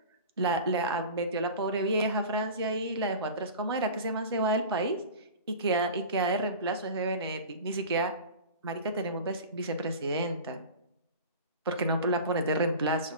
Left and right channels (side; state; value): both; inverted; correlation -0.35